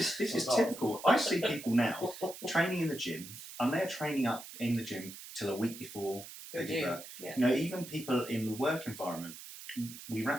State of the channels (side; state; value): right; noise; hiss, 13 dB below the sound